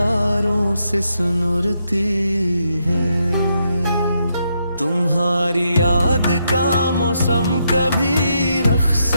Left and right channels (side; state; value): both; inverted; correlation -0.79